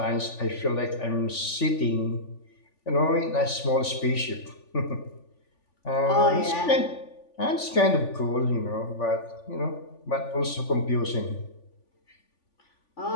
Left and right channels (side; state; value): right; late; 3.5 ms